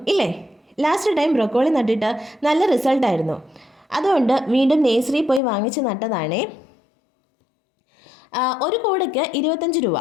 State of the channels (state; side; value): drops out; right; at 5.4 s